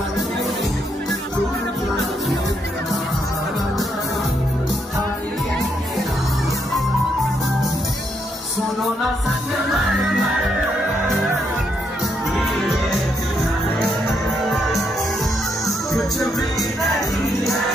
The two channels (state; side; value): normal; both; correlation 0.77